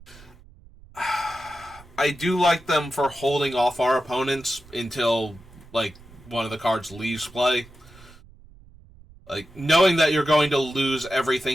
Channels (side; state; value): right; noise; rumble, 23 dB below the sound